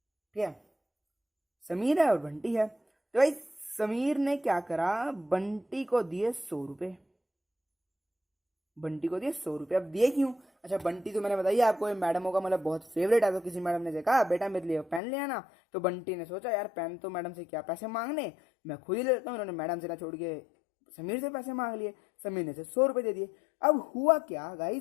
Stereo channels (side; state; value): right; drops out; at 15.0 s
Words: ठीक है, समीर है और बंटी है। तो भाई समीर ने क्या करा, बंटी को दिए 100 रुपये, बंटी को दिए 100 रुपये। अब दिए क्यों, अच्छा बंटी तो मैंने बताइए आपको, ये मैडमों का मतलब बहुत फेवरेट है। तो किसी मैडम ने देखा बेटा मेरे लिए पेन ले आना, तो बंटी ने सोचा यार पेन तो मैडम से क्या पैसे मांगने, मैं खुद ही ले लेता हूँ। उन्होंने मैडम से ना छोड़ के समीर से पैसे मांग लिए, समीर ने से 100 रुपये दे दिए। अब हुआ क्या